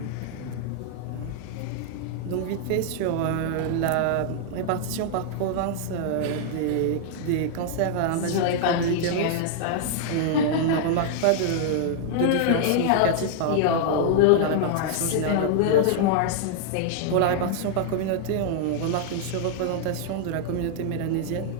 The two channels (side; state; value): both; different; correlation -0.01